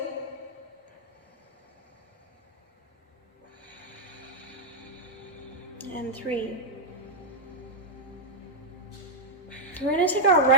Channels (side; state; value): both; normal; correlation -0.04